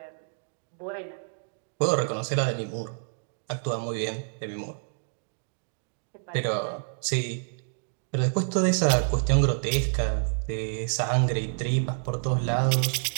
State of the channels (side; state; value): left; silent; digital silence